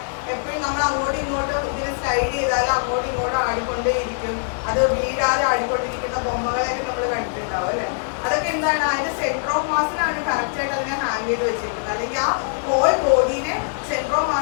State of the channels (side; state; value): right; silent; digital silence